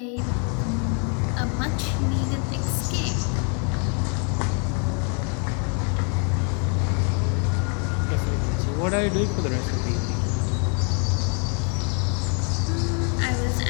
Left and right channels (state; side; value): quieter; right; 39.7 dB